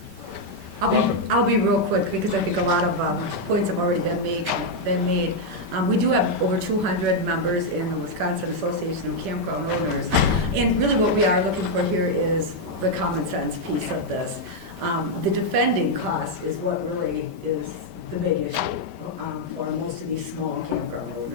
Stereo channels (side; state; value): left; late; 5.2 ms